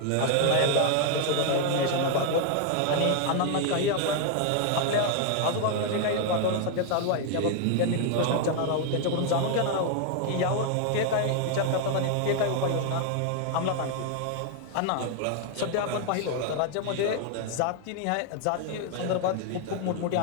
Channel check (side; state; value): both; different; correlation 0.00